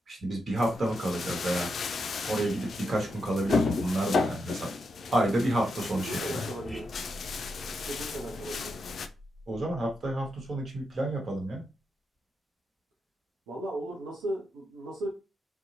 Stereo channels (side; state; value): both; normal; correlation 0.84